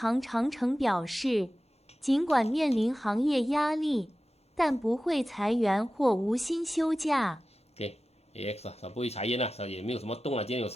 长城表示，尽管面临行业压力，但不会裁员或无薪休假。AX 啊，它不会裁员啊，它也没有什么动啊，今天有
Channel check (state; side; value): normal; both; correlation 0.95